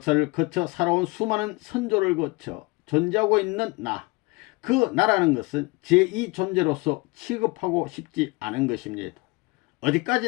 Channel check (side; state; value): right; quieter; 25.4 dB